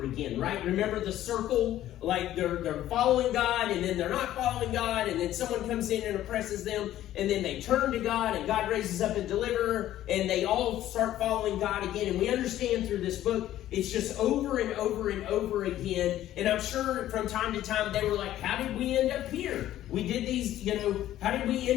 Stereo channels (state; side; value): quieter; right; 13.1 dB